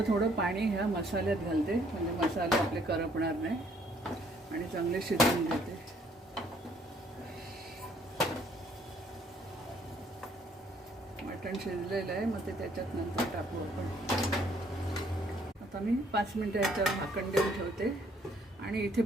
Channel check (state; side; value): normal; both; correlation 0.64